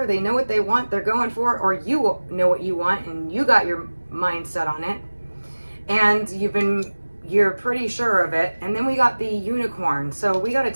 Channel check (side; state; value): both; inverted; correlation -1.00